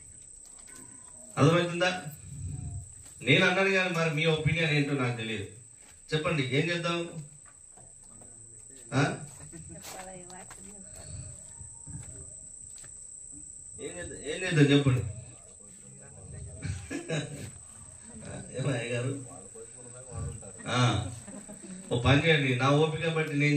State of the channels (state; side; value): identical; both; correlation 1.00